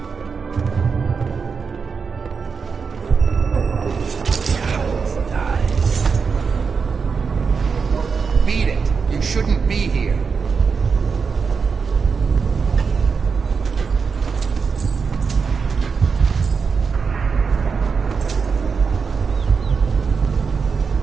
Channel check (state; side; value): quieter; left; 5.5 dB